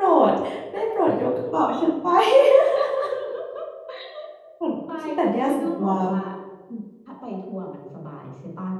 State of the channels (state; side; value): identical; both; correlation 1.00